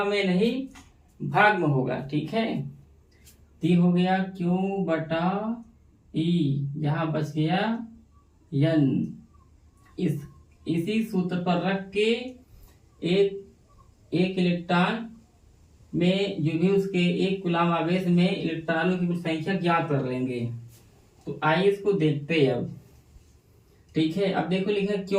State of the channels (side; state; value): both; identical; correlation 1.00